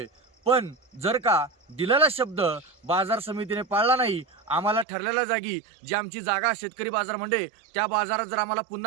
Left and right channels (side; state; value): left; drops out; at 4.9 s